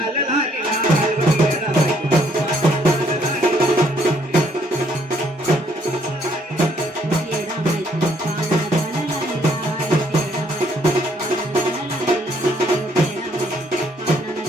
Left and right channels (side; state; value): both; normal; correlation 0.67